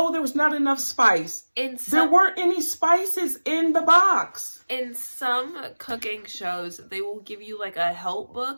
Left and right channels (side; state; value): both; inverted; correlation -1.00